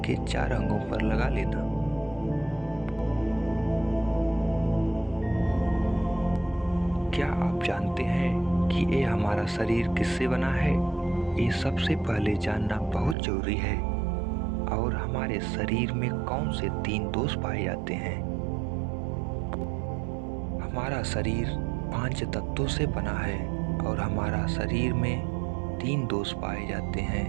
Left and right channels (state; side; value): drops out; left; at 13.2 s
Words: 4 अंगों पर लगा लेना। क्या आप जानते हैं कि ये हमारा शरीर किससे बना है? ये सबसे पहले जानना बहुत जरूरी है। और हमारे शरीर में कौन से 3 दोष पाए जाते हैं? हमारा शरीर 5 तत्वों से बना है और हमारा शरीर में 3 दोष पाए जाते हैं,